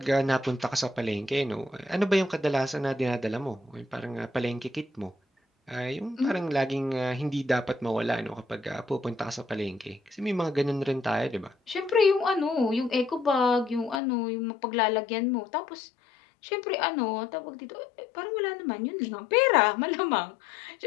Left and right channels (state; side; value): drops out; right; at 14.0 s